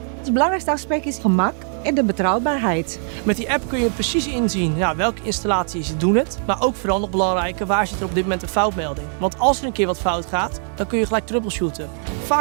Het belangrijkste aspect is gemak en de betrouwbaarheid. Met die app kun je precies inzien welke installaties doen het. Maar ook vooral nog belangrijker, waar zit er op dit moment een foutmelding. Want als er een keer wat fout gaat, dan kun je gelijk troubleshooten.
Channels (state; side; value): silent; left; 59 dB below the other